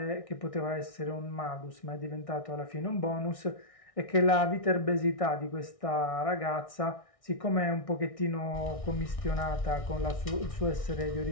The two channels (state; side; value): late; right; 1.6 ms